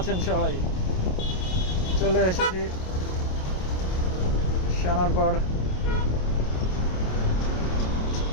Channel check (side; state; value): right; late; 27 ms